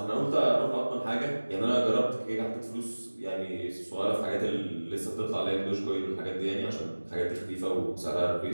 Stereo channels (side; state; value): both; inverted; correlation -1.00